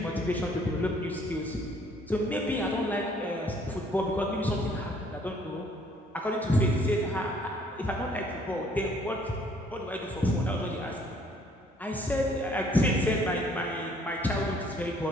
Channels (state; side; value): normal; both; correlation 0.61